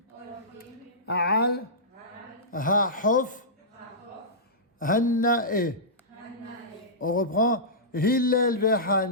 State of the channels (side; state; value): both; normal; correlation -0.17